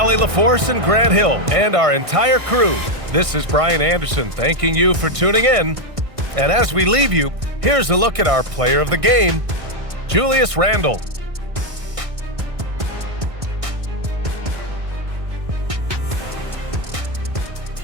LaForce, and Grant Hill, and our entire crew, this is Brian Anderson thanking you for tuning in. And as we leave you, here's a look at our player of the game, Julius Randle.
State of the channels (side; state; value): left; late; 1.6 ms